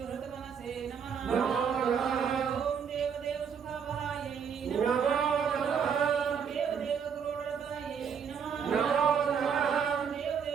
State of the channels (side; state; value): left; quieter; 7.0 dB